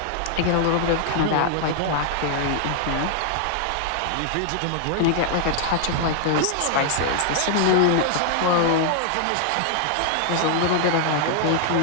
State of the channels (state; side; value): different; both; correlation 0.00